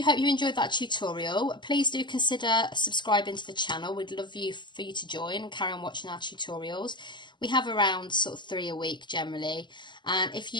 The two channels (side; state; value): right; late; 0.22 ms